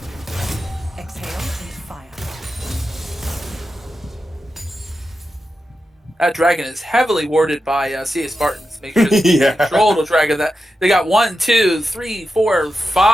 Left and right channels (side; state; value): both; normal; correlation 0.90